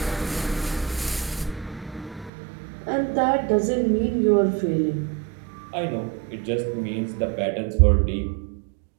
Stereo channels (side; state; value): left; drops out; at 2.3 s